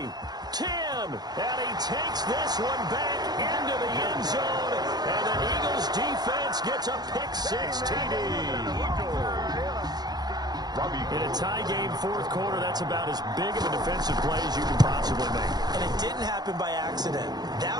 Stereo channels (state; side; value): late; left; 0.19 ms